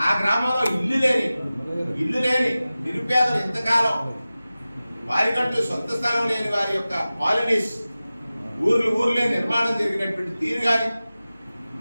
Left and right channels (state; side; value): inverted; both; correlation -0.96